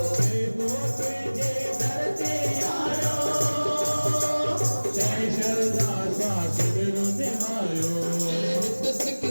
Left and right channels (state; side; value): inverted; both; correlation -1.00